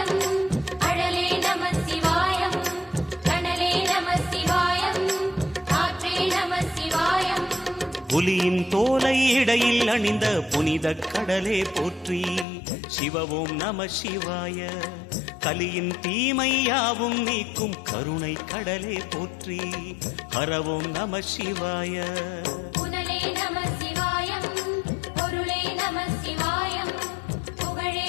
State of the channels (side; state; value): right; drops out; at 12.5 s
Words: அழலே நம சிவாயம், கனலே நம சிவாயம், காற்றே நம சிவாயம். புலியின் தோலை இடையில் அணிந்த புனித கடலே போற்றி. சிவவும் நம சிவாய. கலியின் தீமையாவும் நீக்கும் கருணை கடலே போற்றி. ஹரவும் நம சிவாய. புனலே நம சிவாயம், பொருளே நம சிவாயம், புகழே